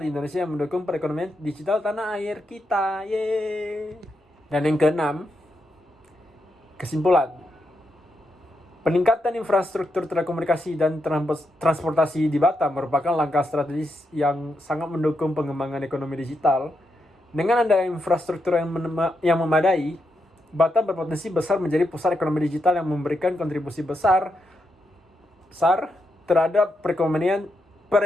di Indonesia yang mendukung perekonomian digital tanah air kita. Yeay. Dan yang keenam, kesimpulan. Peningkatan infrastruktur telekomunikasi dan transportasi di Batam merupakan langkah strategis yang sangat mendukung pengembangan ekonomi digital. Dengan adanya infrastruktur yang memadai, Batam berpotensi besar menjadi pusat ekonomi digital yang memberikan kontribusi besar terhadap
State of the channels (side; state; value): both; normal; correlation 0.83